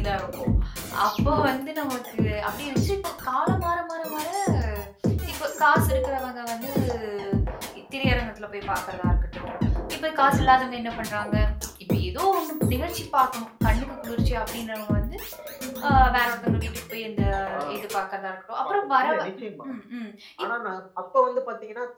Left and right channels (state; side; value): identical; both; correlation 1.00